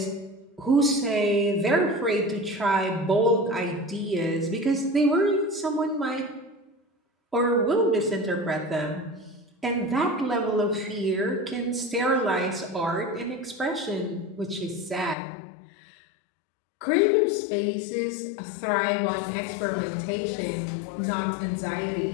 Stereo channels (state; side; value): drops out; right; at 15.2 s